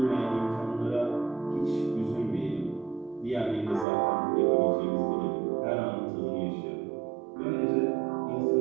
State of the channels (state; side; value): drops out; left; at 3.9 s